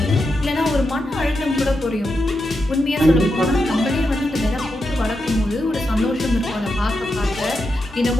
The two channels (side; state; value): both; normal; correlation 0.86